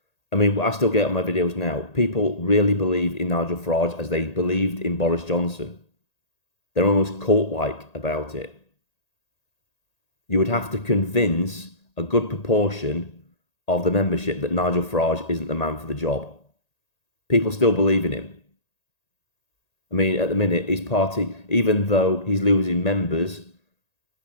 I mean, I still get on my videos now. People really believe in Nigel Farage as they believed in Boris Johnson. They're almost cult-like about it. You would have to convince a good proportion of the membership that Nigel Farage isn't the man for the job. People still believe in him. I mean, at the minute, his party, even though he's losing members,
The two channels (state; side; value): late; right; 1.8 ms